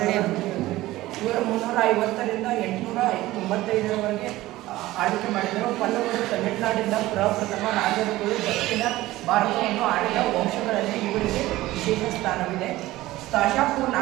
ಇವರು 350ರಿಂದ 895ರವರೆಗೆ ಆಳ್ವಿಕೆ ಮಾಡಿದರು. ಪಲ್ಲವರು ತಮಿಳುನಾಡಿನ ಪ್ರಪ್ರಥಮ ರಾಜರುಗಳು ದಕ್ಷಿಣ ಭಾರತವನ್ನು ಆಳಿದ ವಂಶಗಳಲ್ಲಿ ಇವರಿಗೆ ವಿಶೇಷ ಸ್ಥಾನವಿದೆ. ಶಾಪೂರ್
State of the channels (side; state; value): left; quieter; 17.1 dB